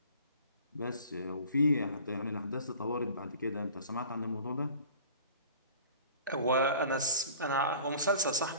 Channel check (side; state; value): both; inverted; correlation -0.46